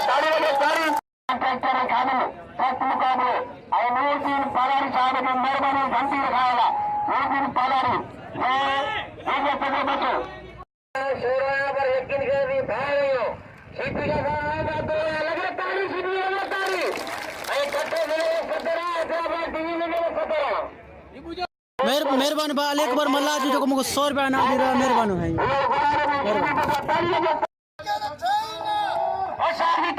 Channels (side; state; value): both; identical; correlation 1.00